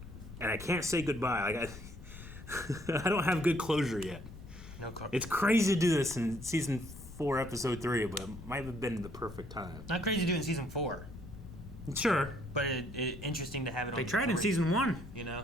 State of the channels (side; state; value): left; noise; rumble, 14 dB below the sound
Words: and I can't say goodbye. Like, I don't have good closure yet. No closure. It's crazy to do this in season 4, episode 3, but it might have been the perfect time. Not crazy to do in season 4. Sure. But it interesting to have it on They the tried in board, season 1. You know?